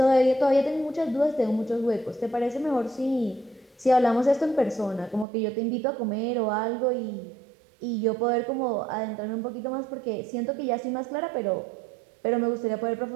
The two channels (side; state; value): left; drops out; at 5.2 s